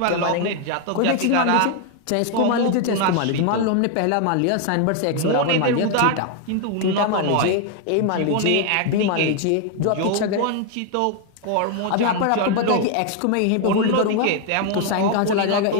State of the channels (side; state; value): both; different; correlation 0.00